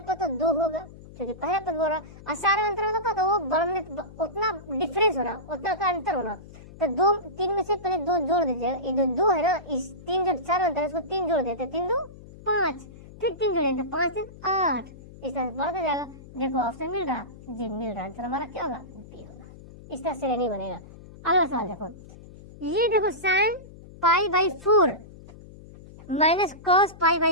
तो 2 होगा, क्योंकि पहला पद बोल रहा और सारा अंतर होता तो वो बढ़ने उतना डिफरेंस होना, उतना का अंतर होना, तो 2 3 में से पहले 2 जोड़ दीजिए, ये 2 है ना, इस 3 जो 4 अंतर है इसको 3 जोड़ देते, 3 2 5, फिर 3 जोड़ेंगे 5 3 8, इस तरह से बढ़ता जाएगा। देखो ऑप्शन मिल रहा जी, मिल रहा, आंसर हमारा क्या होगा, बी होगा। इस तरह से नहीं बनेगा। अगला सवाल देखो, ये देखो sin π/4 माइनस cos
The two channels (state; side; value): noise; left; hum, 18 dB below the sound